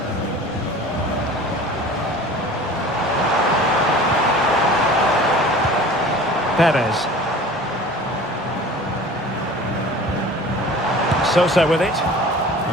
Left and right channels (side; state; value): both; normal; correlation 0.42